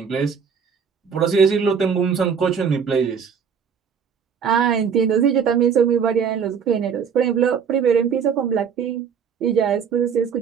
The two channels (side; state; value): left; quieter; 6.8 dB